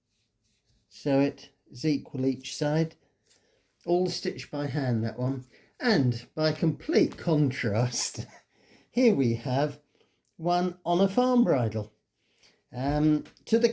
so it is equal each side, all stitched by hand, that one. And by complete contrast, here we have one on a farm bridle. To the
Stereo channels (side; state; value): both; identical; correlation 1.00